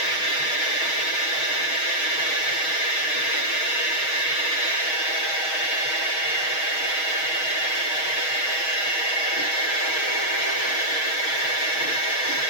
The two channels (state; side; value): late; right; 6.3 ms